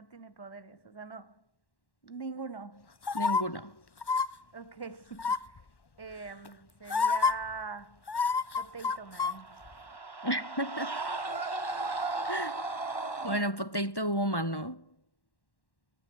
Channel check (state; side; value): late; right; 1.1 ms